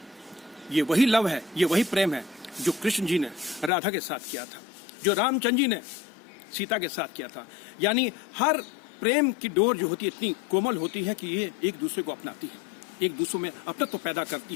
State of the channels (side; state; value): right; drops out; at 3.7 s